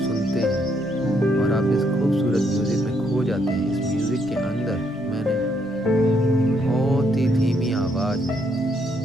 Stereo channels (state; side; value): normal; both; correlation 0.73